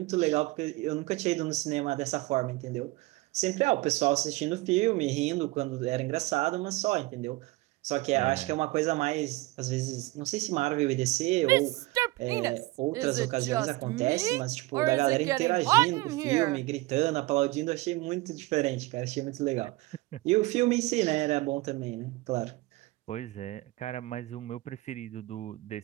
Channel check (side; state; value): left; quieter; 20.2 dB